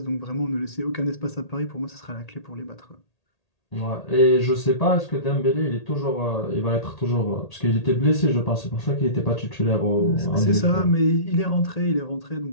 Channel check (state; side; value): late; right; 1.8 ms